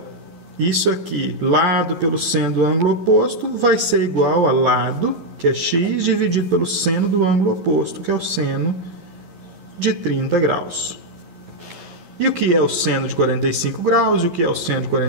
isso aqui, lado pelo seno do ângulo oposto, vai ser igual a lado, que é x, dividido pelo seno do ângulo oposto, que é o seno de 30 graus. E o que é o seno de 45 graus e o que é o seno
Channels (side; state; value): left; late; 12 ms